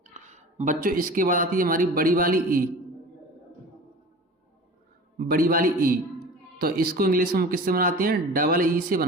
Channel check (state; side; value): normal; both; correlation 0.38